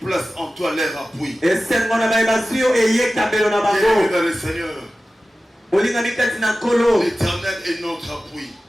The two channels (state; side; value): normal; both; correlation 0.95